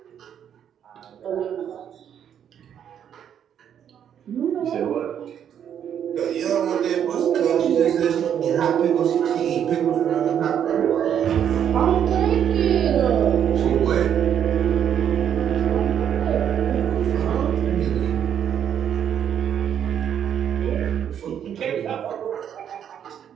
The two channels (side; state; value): left; quieter; 9.1 dB